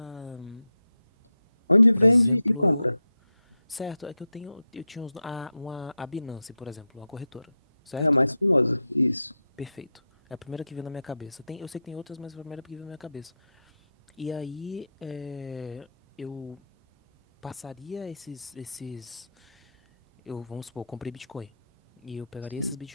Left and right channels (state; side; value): inverted; both; correlation -0.85